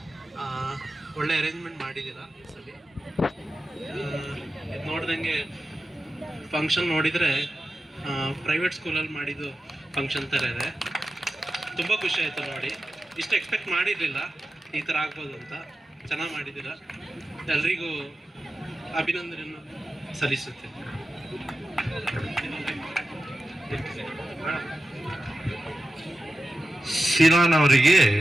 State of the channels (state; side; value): normal; both; correlation 0.93